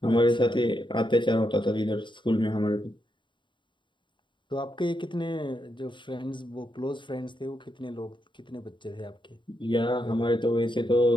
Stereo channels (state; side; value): late; right; 0.23 ms